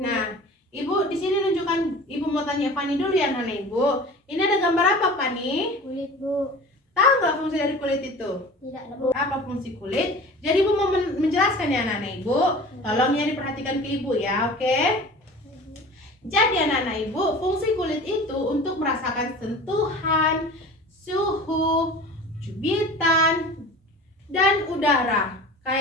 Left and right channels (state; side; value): normal; both; correlation 0.39